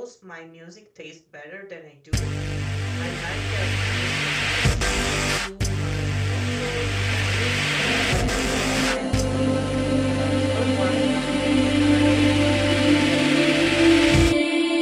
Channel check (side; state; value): both; identical; correlation 1.00